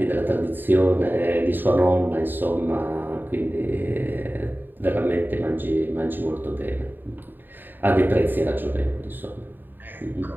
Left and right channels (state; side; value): late; left; 0.092 ms